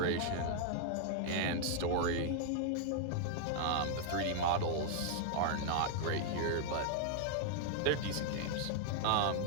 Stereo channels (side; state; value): both; different; correlation 0.00